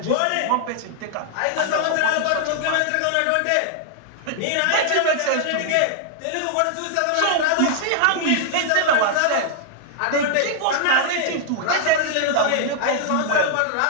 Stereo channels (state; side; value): different; both; correlation -0.01